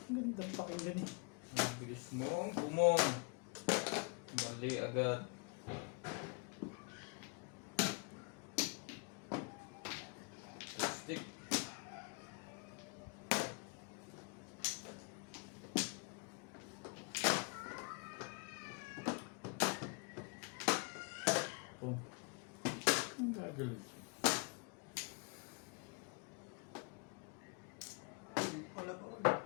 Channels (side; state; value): right; quieter; 34.7 dB